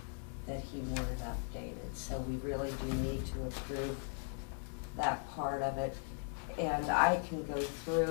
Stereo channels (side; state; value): right; silent; 52 dB below the other